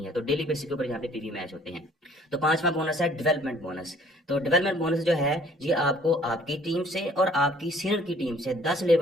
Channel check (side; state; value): both; normal; correlation 0.57